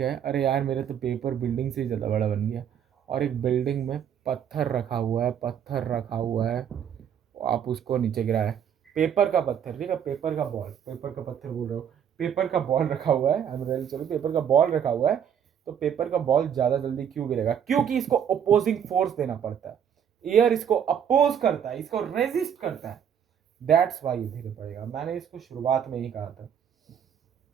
है, अरे यार मेरे तो पेपर बिल्डिंग से ज़्यादा बड़ा बन गया। और एक बिल्डिंग में पत्थर रखा हुआ है, आप उसको नीचे गिराए। पेपर का पत्थर, ठीक है, पेपर का बॉल, पेपर का पत्थर बोल रहे हो, पेपर का बॉल रखा हुआ है, चलो पेपर का बॉल रखा हुआ है। तो पेपर का बॉल ज़्यादा जल्दी क्यों गिरेगा? क्योंकि इसको अपोजिंग फोर्स देना पड़ता है। एयर इसको अपोज करता है, इसको रेजिस्ट करता है। दैट्स वाई धीरे पड़ेगा। मैंने इसको शुरुआत में ही कहा था।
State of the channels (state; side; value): quieter; left; 8.6 dB